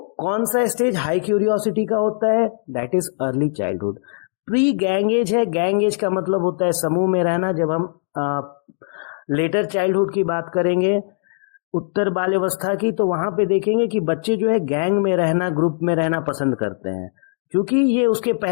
कौन सा स्टेज हाई क्यूरियोसिटी का होता है? That is early childhood. Pre gang as है, गैंग एज का मतलब होता है समूह में रहना। जब हम लेटर चाइल्डहुड की बात करेंगे, उत्तर बाल्यावस्था की, तो वहां पे देखेंगे कि बच्चे जो है गैंग में रहना, ग्रुप में रहना पसंद करते हैं। क्योंकि ये उसके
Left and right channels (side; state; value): right; silent; digital silence